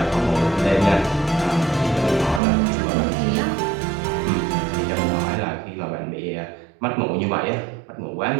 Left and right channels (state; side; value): drops out; left; at 2.4 s